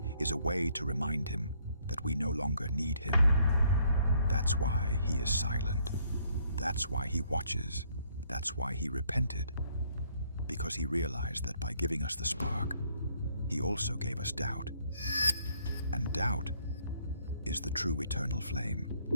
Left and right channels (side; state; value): both; inverted; correlation -0.67